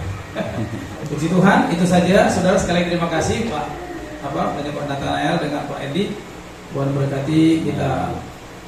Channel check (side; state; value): both; identical; correlation 1.00